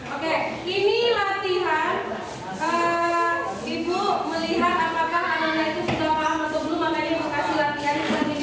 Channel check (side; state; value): both; identical; correlation 1.00